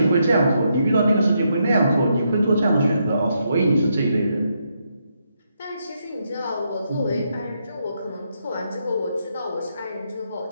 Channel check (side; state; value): both; inverted; correlation -0.79